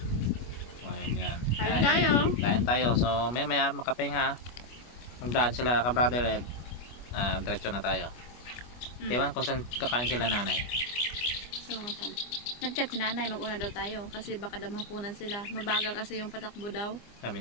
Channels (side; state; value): right; late; 25 ms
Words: Yan. Kain tayo. So maya makapahinga. Magdaan sila ka-brother Ed. Diretso na tayo. Ewan kung saan kakain sila nanay. So, nag-chat si nanay, mag-una daw tayo. Kasi baka daw mapunan sila. Mabagal kasi yung patakbo daw. Sabi